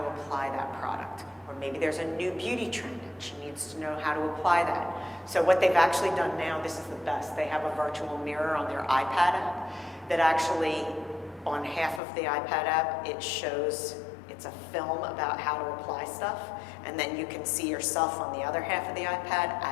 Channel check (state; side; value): drops out; right; at 12.0 s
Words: to apply that product. Or maybe there's a new beauty trend and she needs to know how to apply that. So what they've actually done now, this is the best, they have a virtual mirror on their iPad app that actually, on half of the iPad app, it shows, it's a film about how to apply stuff, and then you can see yourself on the other half of the iPad